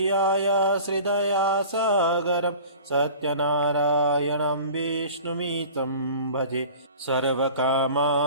श्रीदया सागरं सत्यनारायणं विष्णुमितं भजे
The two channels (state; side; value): inverted; both; correlation -0.42